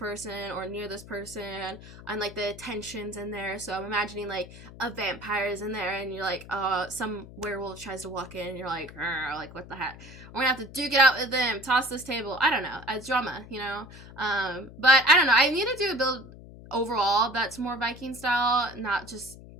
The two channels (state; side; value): noise; left; hum, 17 dB below the sound